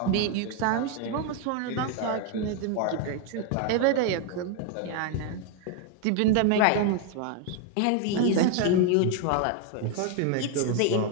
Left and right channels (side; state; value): both; different; correlation 0.01